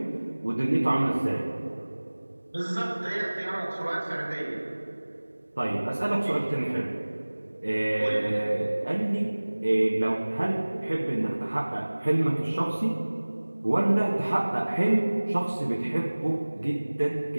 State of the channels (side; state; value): both; inverted; correlation -1.00